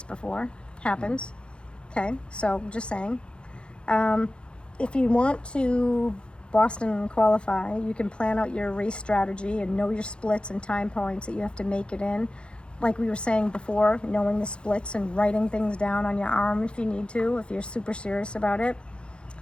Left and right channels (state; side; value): late; right; 0.056 ms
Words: before. Happens. Okay, so just saying. If you want to Boston qualify, you can plan out your race strategy and know your splits and time points that you have to make it in. Like we were saying before, knowing the splits and writing things down on your arm if you need to, if you're super serious about it.